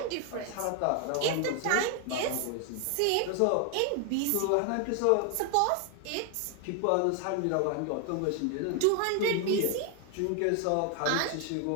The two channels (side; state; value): both; different; correlation 0.00